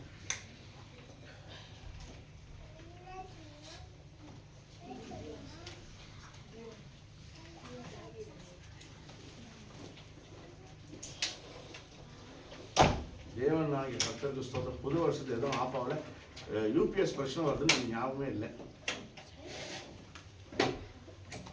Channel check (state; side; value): identical; both; correlation 1.00